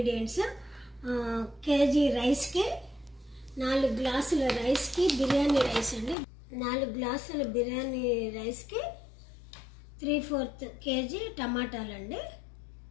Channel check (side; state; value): right; drops out; at 6.2 s